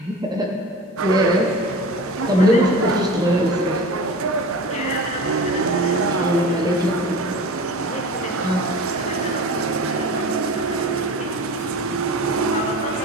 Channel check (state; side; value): normal; both; correlation 0.35